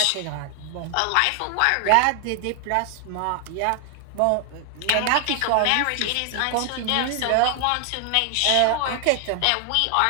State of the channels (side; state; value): both; different; correlation 0.00